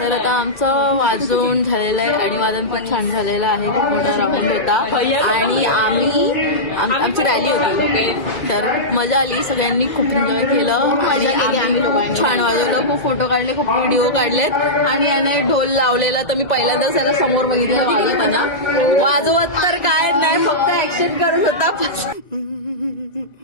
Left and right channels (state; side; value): late; right; 1.9 ms